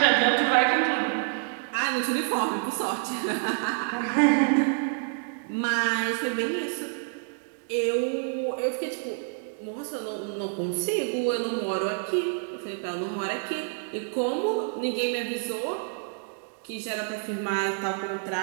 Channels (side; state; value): left; silent; 60 dB below the other